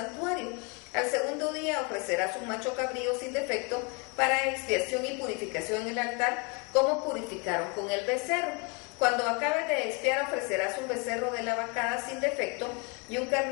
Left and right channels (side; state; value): right; quieter; 32.3 dB